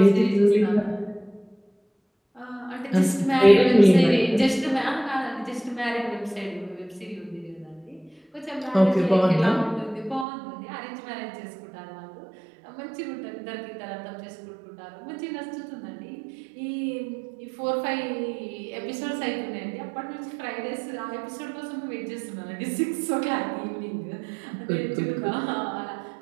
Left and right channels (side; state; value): left; drops out; at 10.2 s